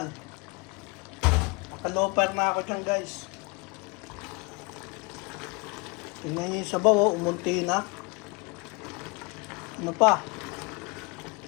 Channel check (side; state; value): right; quieter; 29.0 dB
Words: Nakaloper na ako dyan guys. Tingnan niyo yung sabaw, oh, umunti na. Ano pa?